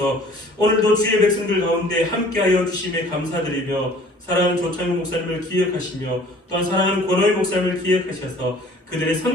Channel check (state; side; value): normal; both; correlation 0.51